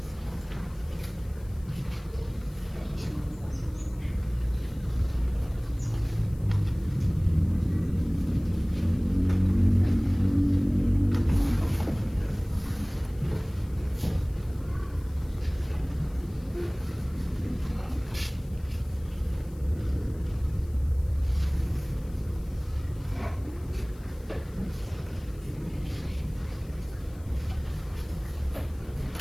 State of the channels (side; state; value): left; noise; hiss, 27 dB below the sound